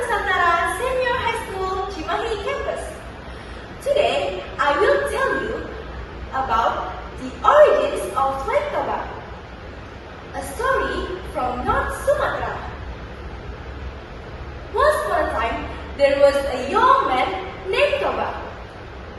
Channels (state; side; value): identical; both; correlation 1.00